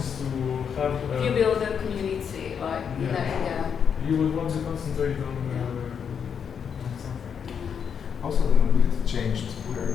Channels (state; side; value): quieter; right; 7.2 dB